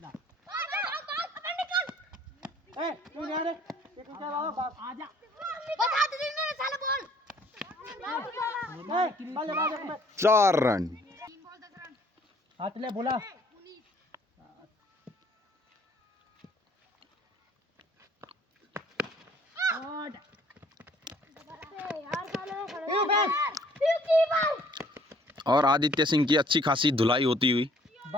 चार रन। हाथ ले बोला। और आदित्य सिंह की अच्छी खासी धुलाई होती हुई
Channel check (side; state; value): both; normal; correlation 0.59